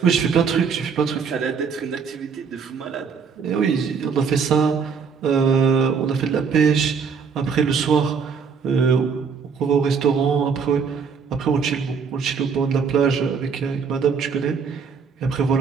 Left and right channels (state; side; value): quieter; left; 5.9 dB